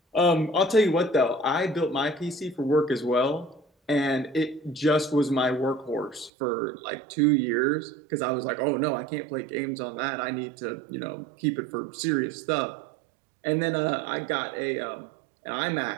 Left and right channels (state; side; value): drops out; left; at 6.3 s